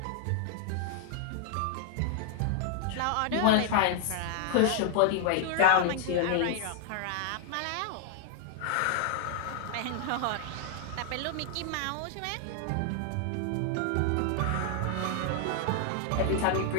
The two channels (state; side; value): different; both; correlation 0.00